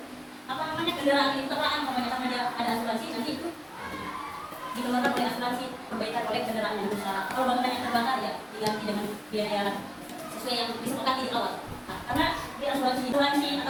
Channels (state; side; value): identical; both; correlation 1.00